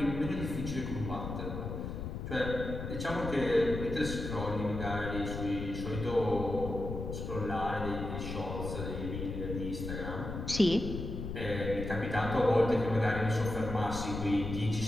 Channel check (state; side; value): noise; left; rumble, 6 dB below the sound